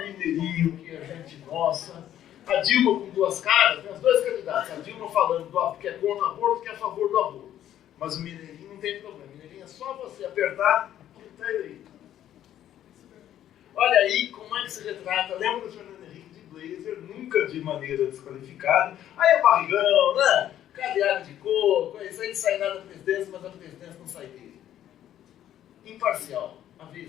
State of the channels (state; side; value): quieter; right; 11.5 dB